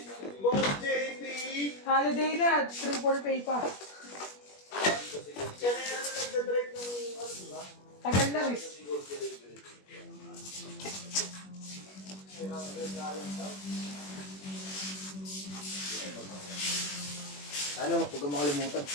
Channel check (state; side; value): late; right; 21 ms